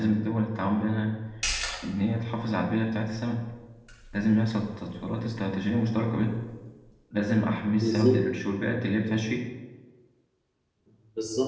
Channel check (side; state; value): both; identical; correlation 1.00